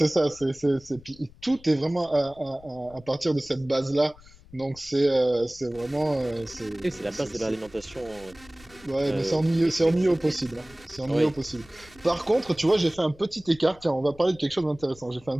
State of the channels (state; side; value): noise; left; rumble, 24 dB below the sound